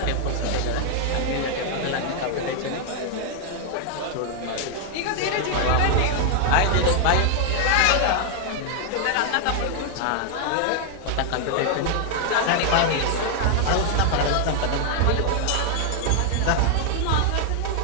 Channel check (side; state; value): both; different; correlation 0.00